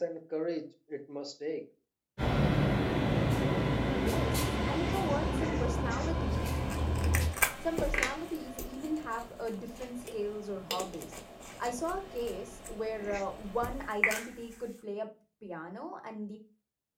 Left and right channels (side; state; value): both; identical; correlation 1.00